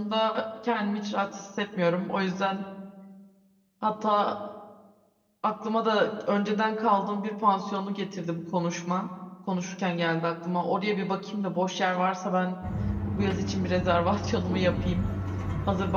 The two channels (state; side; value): identical; both; correlation 1.00